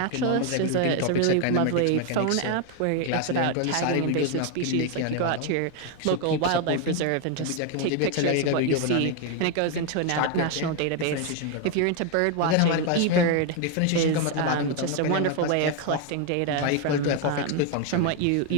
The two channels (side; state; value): both; different; correlation 0.01